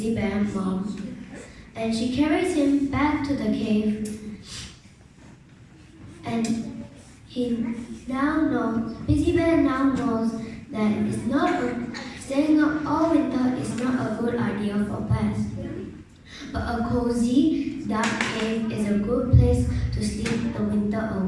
Bear's mom. Then she carries him back to the cave. And Busy Bear now knows that staying up all winter is not a good idea for bears. But a cozy, dark cave is a good place to sleep the winter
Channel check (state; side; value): identical; both; correlation 1.00